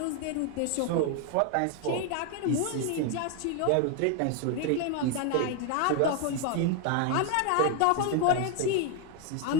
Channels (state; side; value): different; both; correlation 0.01